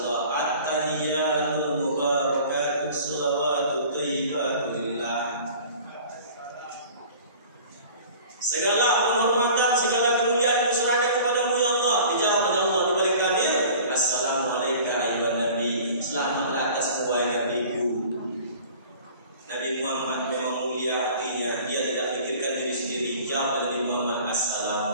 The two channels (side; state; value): both; inverted; correlation -0.45